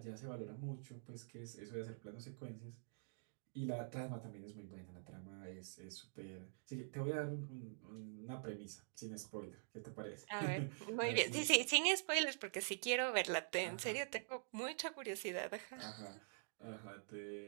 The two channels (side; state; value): left; silent; digital silence